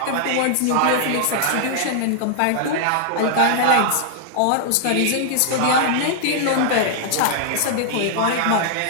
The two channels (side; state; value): both; different; correlation -0.01